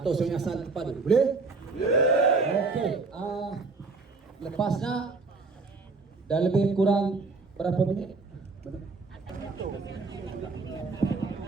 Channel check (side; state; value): left; quieter; 4.1 dB